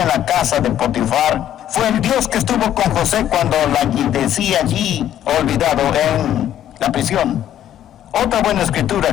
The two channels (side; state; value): right; quieter; 11.2 dB